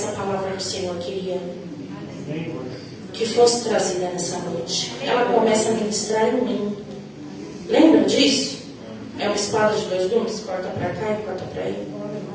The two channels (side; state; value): both; identical; correlation 1.00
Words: palavra que o Senhor queria que fosse trazida nessa noite. Ela começa a ministrar em mim. Lembra disso? É uma espada de dois gumes, corta para cá e corta para aí.